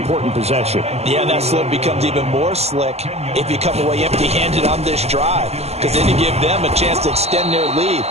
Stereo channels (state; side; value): late; left; 0.30 ms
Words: possession. Yeah, that slope becomes even more slick if you come away empty-handed on this drive, because then you give them a chance to extend their lead.